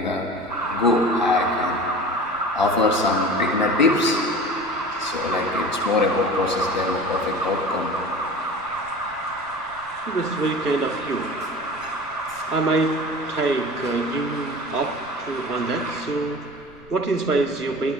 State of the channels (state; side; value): noise; right; rumble, 24 dB below the sound